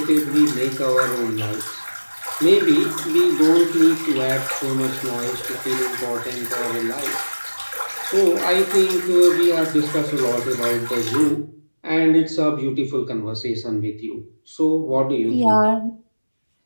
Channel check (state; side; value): inverted; both; correlation -1.00